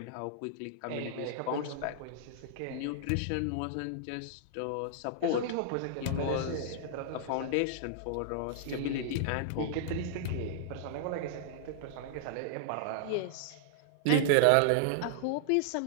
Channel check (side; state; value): both; different; correlation -0.01